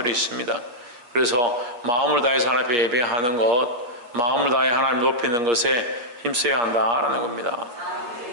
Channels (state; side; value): late; left; 8.4 ms